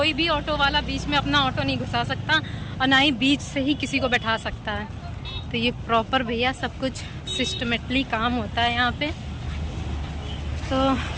भी ऑटो वाला बीच में अपना ऑटो नहीं घुसा सकता, और ना ही बीच से ही किसी को बैठा सकता है। तो ये प्रॉपर भैया सब कुछ सिस्टमेटली काम होता है यहाँ पे। तो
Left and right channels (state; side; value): identical; both; correlation 1.00